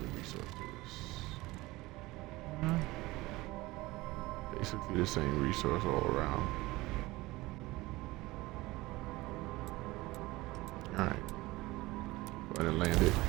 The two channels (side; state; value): left; quieter; 20.0 dB